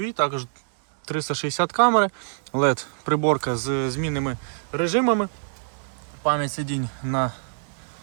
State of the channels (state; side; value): silent; left; digital silence